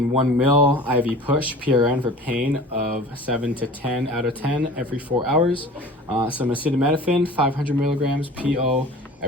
1 mil IV push PRN for pain of 7 to 10 out of 10 every 4 hours. Some acetaminophen, 500 milligrams PO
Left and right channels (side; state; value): both; normal; correlation 0.42